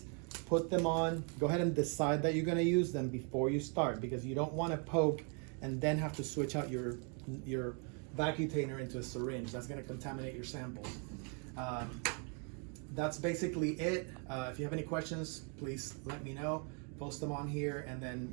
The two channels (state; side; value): quieter; left; 38.5 dB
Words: put them on, go ahead and decide that you're gonna use them before you start, because you don't wanna poke and then have to switch out your vacutainer into a syringe. That's gonna contaminate your samples. That's basically it. If you have any questions, please let me know. Post them on here, and